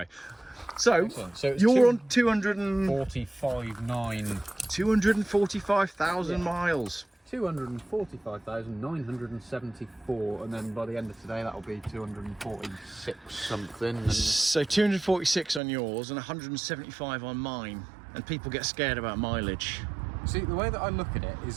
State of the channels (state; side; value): drops out; left; at 15.6 s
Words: so you're on 245,000 miles. 245,974, and then by the end of today that'll be 246 something. So 246 on yours and 175 on mine, and people get scared about mileage. See, the way that I look at it